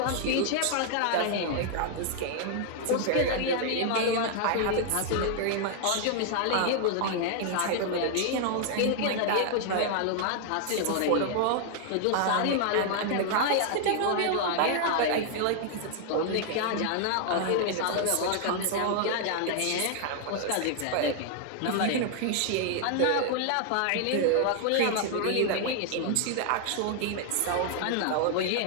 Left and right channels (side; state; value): both; different; correlation 0.00